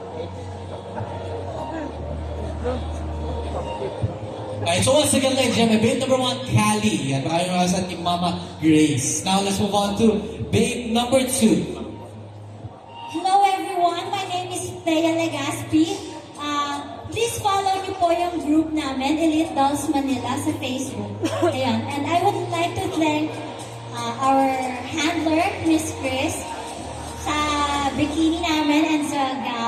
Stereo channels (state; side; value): identical; both; correlation 1.00